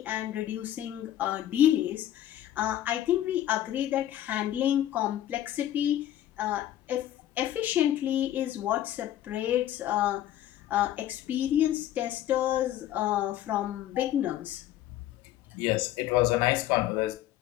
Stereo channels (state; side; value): quieter; right; 12.6 dB